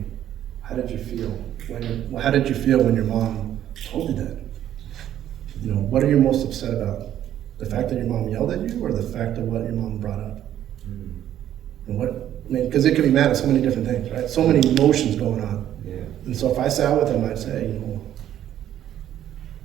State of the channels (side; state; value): left; quieter; 11.3 dB